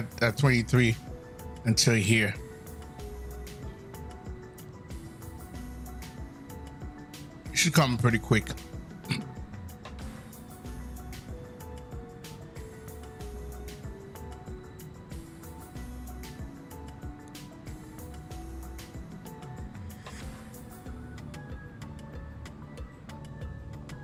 23 until here. It should come pretty quick.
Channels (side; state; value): both; identical; correlation 1.00